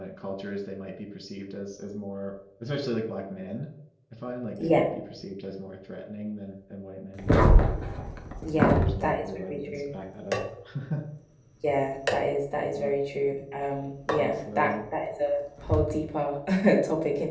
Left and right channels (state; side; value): identical; both; correlation 1.00